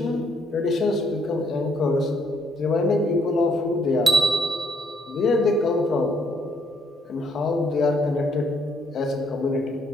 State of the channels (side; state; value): both; normal; correlation 0.70